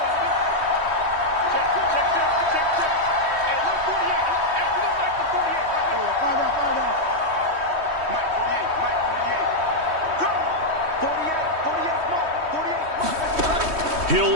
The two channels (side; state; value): left; late; 3.1 ms